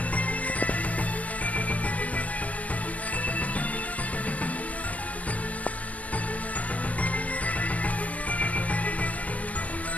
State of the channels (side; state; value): right; late; 0.069 ms